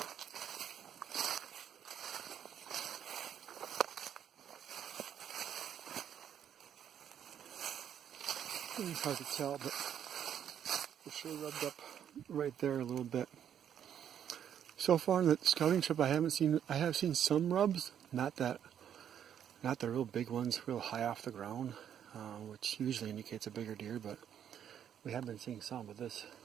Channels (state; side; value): quieter; left; 9.3 dB